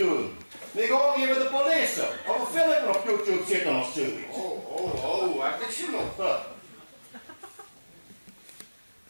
Ik ga hier met de politie. Of een filmpje op YouTube zitten of zoiets. Oh, heb ik ze nog?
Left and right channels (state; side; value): inverted; both; correlation -1.00